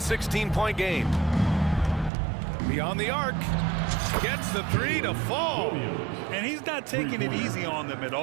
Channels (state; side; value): drops out; left; at 2.1 s